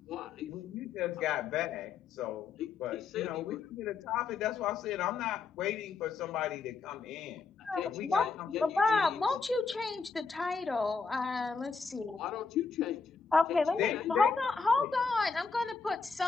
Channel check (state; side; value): quieter; right; 4.9 dB